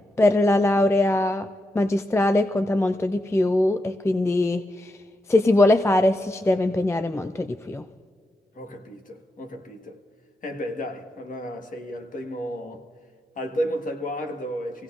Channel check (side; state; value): both; normal; correlation 0.85